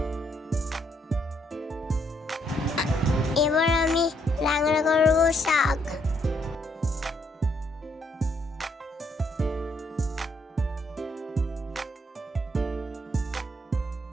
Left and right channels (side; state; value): both; normal; correlation 0.72